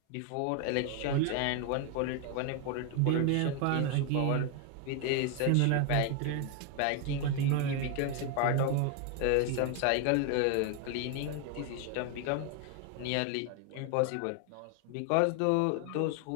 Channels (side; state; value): both; different; correlation 0.01